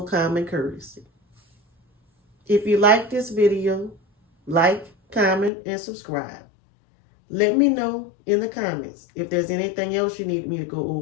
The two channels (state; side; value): drops out; right; at 5.5 s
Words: courtesy. If you like this video, like, comment, and subscribe. Let me know in the comments if there's anything else you need me to go